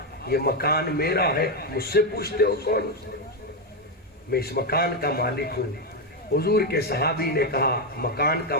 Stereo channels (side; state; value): both; normal; correlation 0.05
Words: یہ مکان میرا ہے، مجھ سے پوچھتے ہو کون؟ میں اس مکان کا مالک ہوں. حضور کے صحابی نے کہا مکان کا